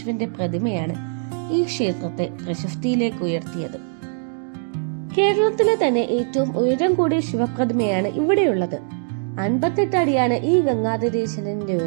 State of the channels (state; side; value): silent; left; digital silence